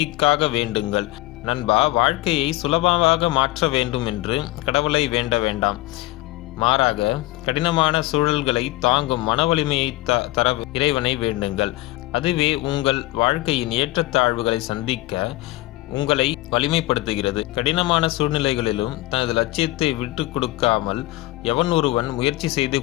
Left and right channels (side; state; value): right; quieter; 18.6 dB